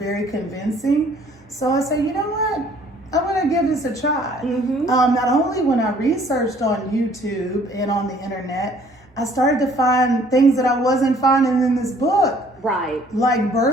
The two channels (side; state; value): both; normal; correlation 0.58